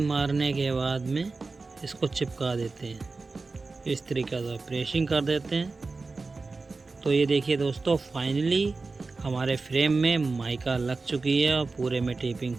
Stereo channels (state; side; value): quieter; left; 3.9 dB